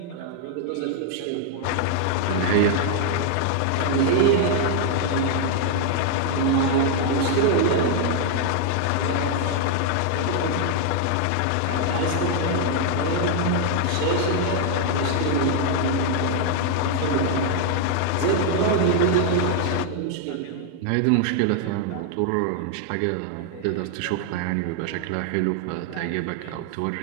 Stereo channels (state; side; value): different; both; correlation 0.00